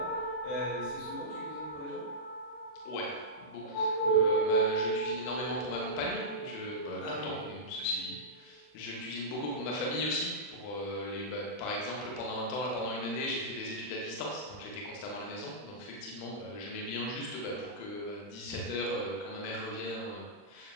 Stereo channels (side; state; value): right; late; 39 ms